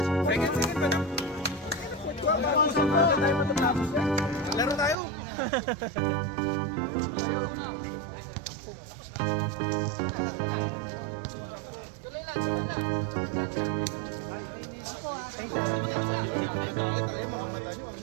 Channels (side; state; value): left; drops out; at 5.0 s